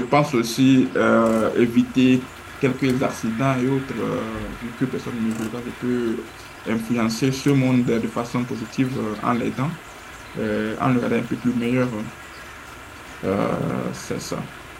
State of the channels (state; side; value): identical; both; correlation 1.00